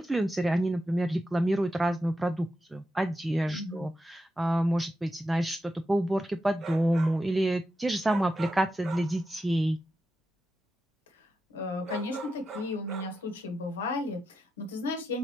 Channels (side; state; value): both; normal; correlation 0.88